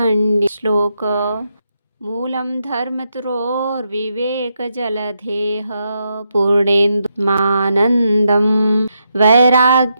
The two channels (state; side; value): inverted; both; correlation -0.82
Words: श्लोक। मूलं धर्मतरोर्विवेक जलधेः पूर्णेन्दुमानन्दं